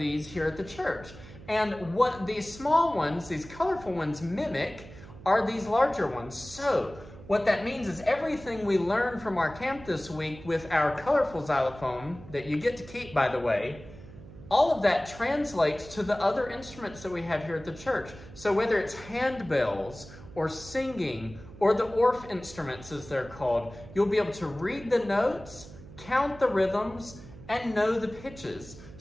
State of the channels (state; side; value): noise; right; hum, 17 dB below the sound